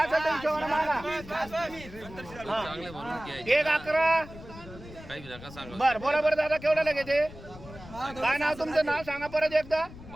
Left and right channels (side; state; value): left; noise; rumble, 16 dB below the sound